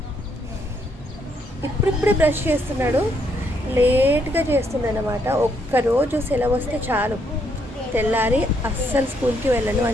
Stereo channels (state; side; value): normal; both; correlation 0.73